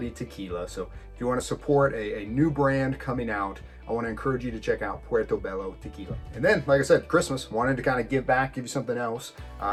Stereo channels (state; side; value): identical; both; correlation 1.00